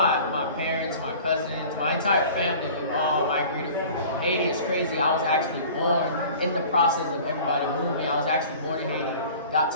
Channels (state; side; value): inverted; both; correlation -0.44